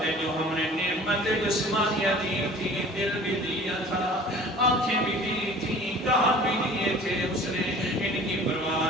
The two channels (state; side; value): normal; both; correlation 0.45